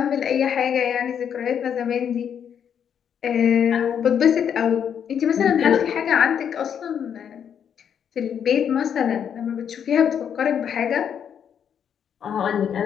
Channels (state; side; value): quieter; right; 8.3 dB